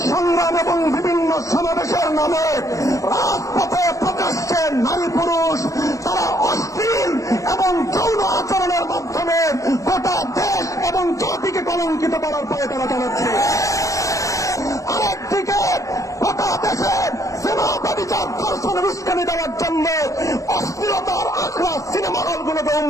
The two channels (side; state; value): right; late; 0.16 ms